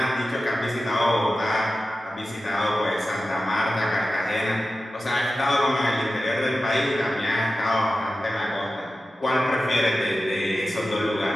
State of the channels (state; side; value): normal; both; correlation 0.94